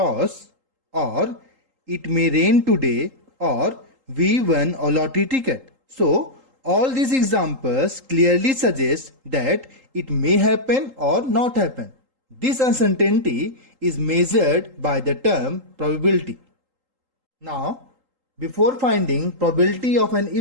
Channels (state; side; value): late; left; 3.8 ms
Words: or it may rain today, or we won a lottery ticket. So, all these examples clearly suggest that it may happen or not happen. This uncertainty is measured by the term probability. Now, before finding probability of an